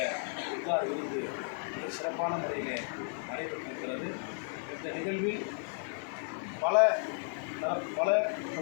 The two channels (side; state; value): right; silent; 55 dB below the other